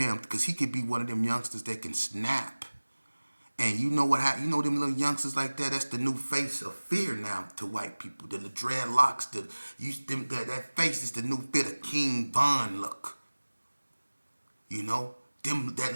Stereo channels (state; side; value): inverted; both; correlation -1.00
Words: because he could be one of them youngsters that can snap. And you know what happened? You know them little youngsters like that? That's the new face of fear now to white people. The dreadlocks, that face is the new fit of King Von look. You know?